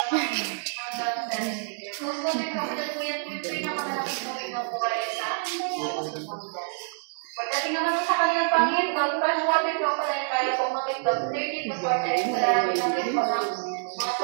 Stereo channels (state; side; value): silent; left; digital silence